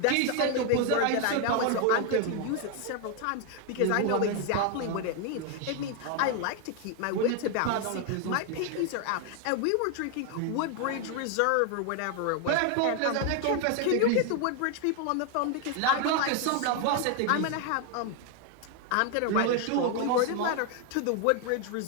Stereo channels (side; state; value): both; different; correlation 0.01